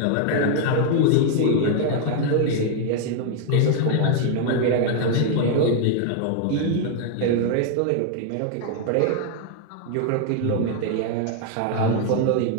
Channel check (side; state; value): both; different; correlation 0.00